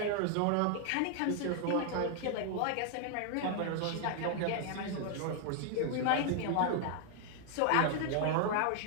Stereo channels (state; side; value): different; both; correlation 0.00